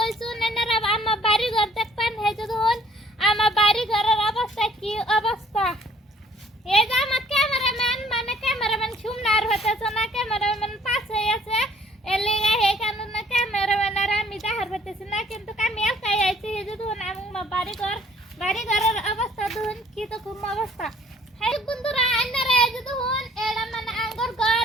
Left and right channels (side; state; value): both; normal; correlation 0.58